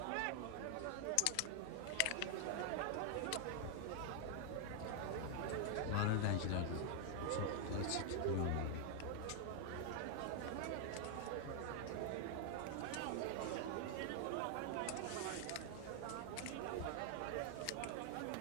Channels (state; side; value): different; both; correlation 0.00